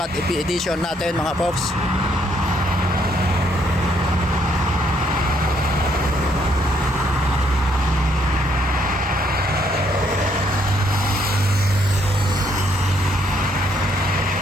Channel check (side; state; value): both; normal; correlation 0.70